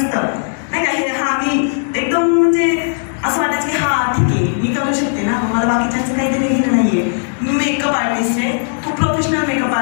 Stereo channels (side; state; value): right; silent; 58 dB below the other